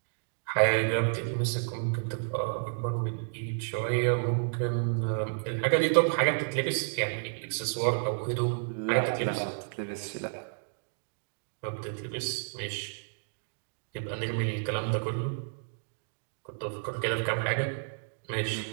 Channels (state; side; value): silent; left; digital silence